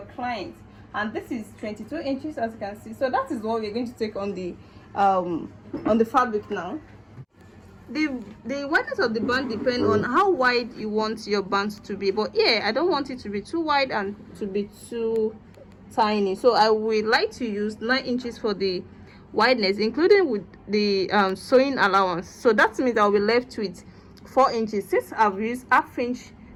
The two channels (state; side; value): identical; both; correlation 1.00